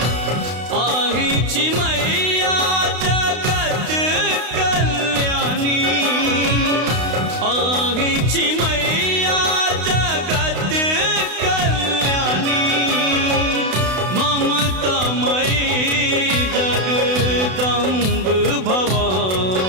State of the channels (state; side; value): late; left; 32 ms